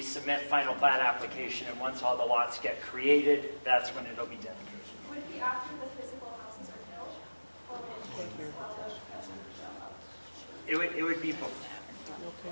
submit final plat application, and once all the lots get created, that's when it'll be dedicated. Would it be after the physical houses are built? Or It would be before.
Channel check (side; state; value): both; inverted; correlation -1.00